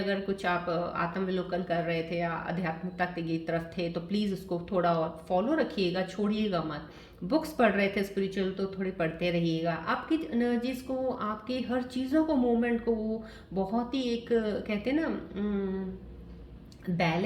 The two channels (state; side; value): identical; both; correlation 1.00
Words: कुछ आप आत्मविलोकन कर रहे थे या आध्यात्मिकता की तरफ थे तो प्लीज़ उसको थोड़ा और फॉलो रखिएगा, छोड़िएगा मत। बुक्स पढ़ रहे थे स्पिरिचुअल तो थोड़ी पढ़ते रहिएगा। आपकी एनर्जीज को, आपकी हर चीज़ों को, मूवमेंट को वो बहुत ही एक कहते हैं ना